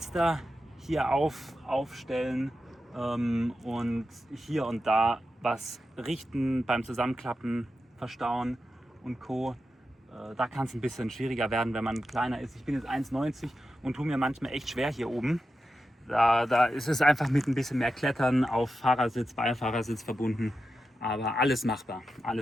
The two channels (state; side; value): normal; both; correlation 0.90